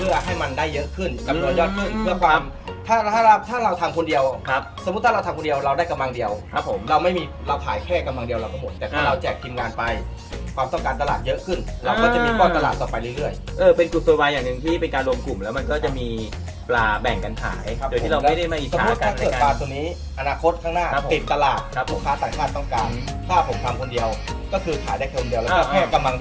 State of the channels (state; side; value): identical; both; correlation 1.00